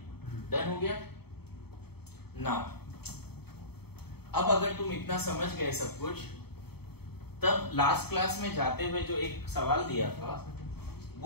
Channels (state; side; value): late; right; 0.96 ms